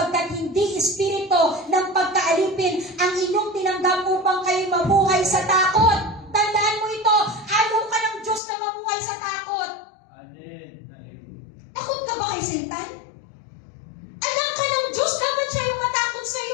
hindi Espiritu ng pagkaalipin ang inyong tinanggap upang kayo mabuhay sa takot. Tandaan mo ito, ayaw ka ng Diyos na mabuhay sa takot. Takot ka ba kay Satan? Anak ka ng Diyos, dapat siya yung matakot sa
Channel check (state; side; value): drops out; right; at 8.4 s